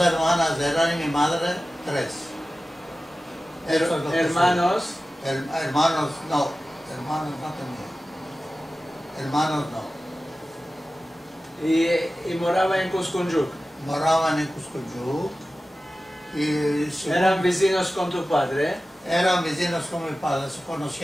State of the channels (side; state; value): both; normal; correlation 0.95